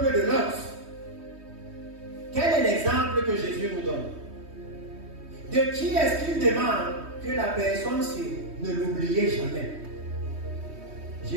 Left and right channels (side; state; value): left; late; 3.2 ms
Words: de Lot. Quel est l'exemple que Jésus nous donne? De qui est-ce qu'il demande que la personne-ci ne l'oubliez jamais?